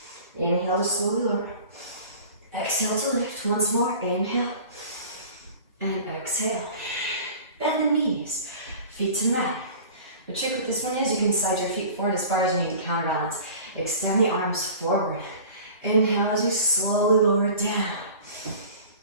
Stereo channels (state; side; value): inverted; both; correlation -0.42